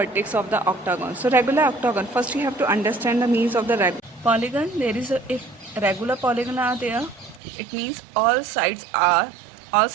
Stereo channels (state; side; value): drops out; left; at 7.4 s